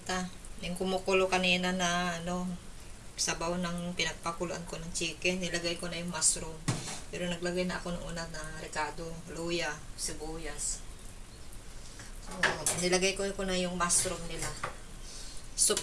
Yung kumukulo kanina na sabaw ng pinagpakuluan ko ng chicken, nilagay ko na yung mushroom. Pero naglagay na ako ng una na ricado, luya, sibuyas. So, nilagay ko na yung mushroom nila. Soup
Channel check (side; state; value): both; identical; correlation 1.00